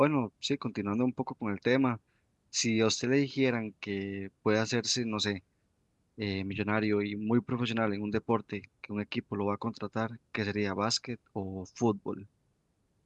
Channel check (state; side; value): identical; both; correlation 1.00